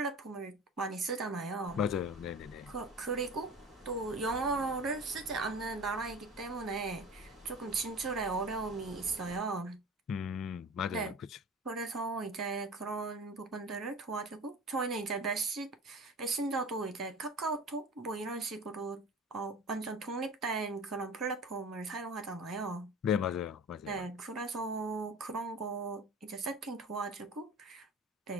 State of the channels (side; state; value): both; normal; correlation 0.36